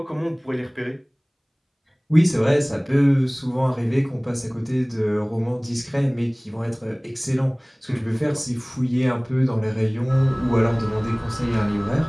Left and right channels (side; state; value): both; identical; correlation 1.00